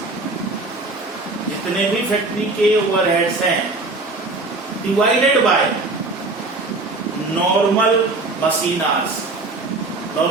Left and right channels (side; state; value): left; quieter; 3.2 dB